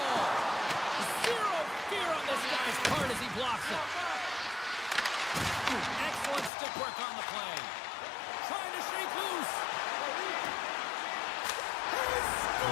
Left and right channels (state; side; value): drops out; right; at 6.5 s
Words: Zero fear on this guy's part as he blocks it. Excellent stick work on the play. Trying to shake loose. He